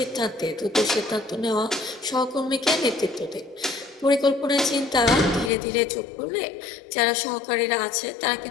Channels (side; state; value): right; drops out; at 5.5 s